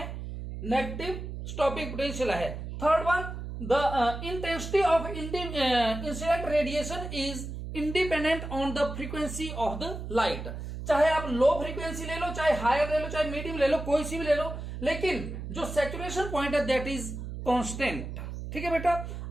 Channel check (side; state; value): right; noise; hum, 7 dB below the sound